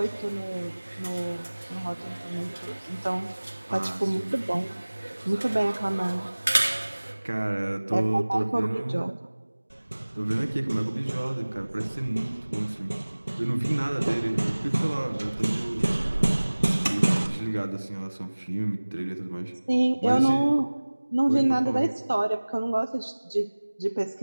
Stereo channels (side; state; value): both; inverted; correlation -1.00